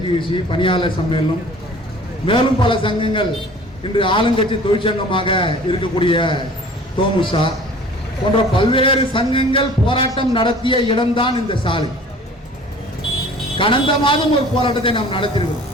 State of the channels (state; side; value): normal; both; correlation 0.47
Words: பணியாளர் சம்மேளனம் மேலும் பல சங்கங்கள் இன்று ஆளுங்கட்சி தொழிற்சங்கமாக இருக்கக்கூடிய தோமுசா போன்ற பல்வேறு சங்கங்கள் போராட்டம் நடத்திய இடம்தான் இந்த சாலை. கடந்த மாதம் ஒரு போராட்டத்தை நாம் நடத்திருக்கிறோம்.